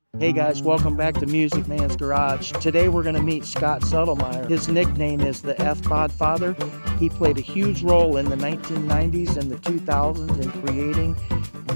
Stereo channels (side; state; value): both; inverted; correlation -1.00